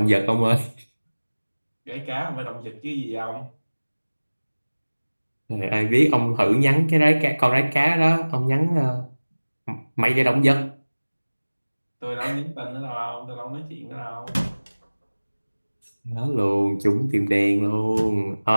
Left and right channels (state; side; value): inverted; both; correlation -1.00